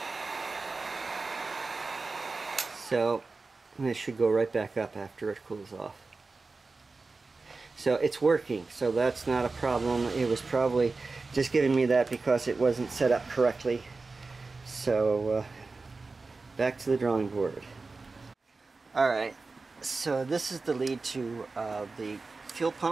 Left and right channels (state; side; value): quieter; left; 3.9 dB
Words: So this should go right back up after it cools off. So it's working, so that's not a problem. It was probably just giving me that because it wasn't set up correctly. So back to the drawing board. Alright, so this is the lead to the fuel